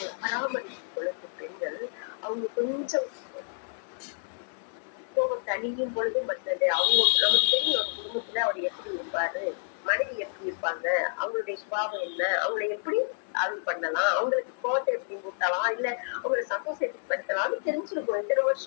பராமரிக்கும் பொழுது பெண்கள் அவங்க கொஞ்சம் கோபம் தணியும் பொழுது மற்றது அவங்க நமக்கு தெரியும். அவங்க குடும்பத்துல அவர் எப்படி இருப்பாரு, மனைவி எப்படி இருப்பாங்க, அவங்களுடைய சுபாவம் என்ன, அவங்களை எப்படி அருள் பண்ணலாம், அவங்களுக்கு கோபத்தை எப்படி ஊட்டலாம், இல்ல அவங்களை சந்தோஷத்துக்கு படுத்தலாம்னு தெரிஞ்சிருக்கோம். இத்தனை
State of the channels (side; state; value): right; silent; 58 dB below the other